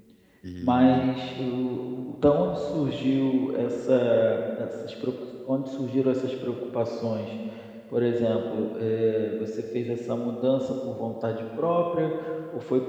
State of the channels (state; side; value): identical; both; correlation 1.00